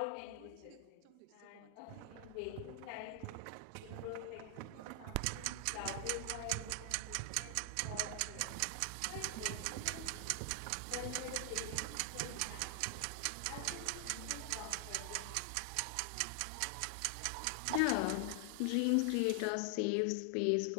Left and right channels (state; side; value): different; both; correlation 0.00